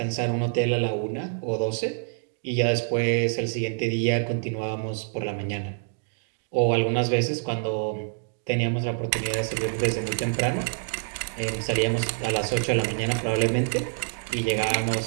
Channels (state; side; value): silent; left; digital silence